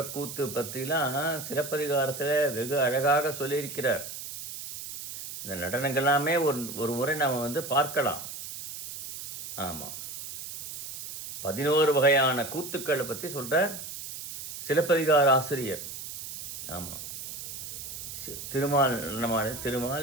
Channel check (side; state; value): right; noise; hiss, 9 dB below the sound